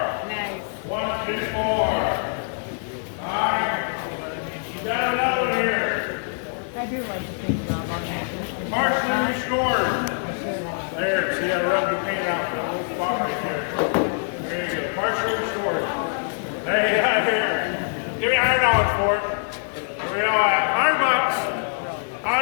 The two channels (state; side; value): silent; right; 63 dB below the other